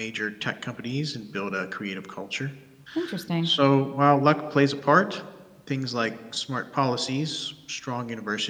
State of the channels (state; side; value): identical; both; correlation 1.00